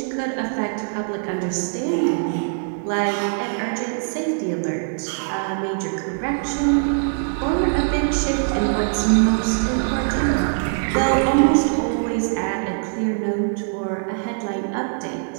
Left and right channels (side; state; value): left; silent; digital silence